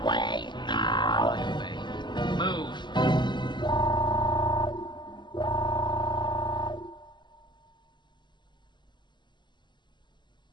away now. Move.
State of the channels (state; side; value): late; right; 0.22 ms